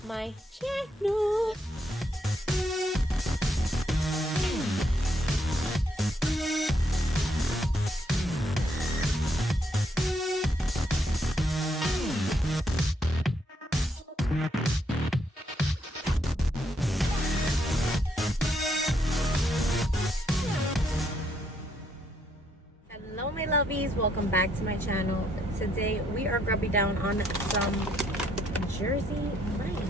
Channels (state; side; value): normal; both; correlation 0.73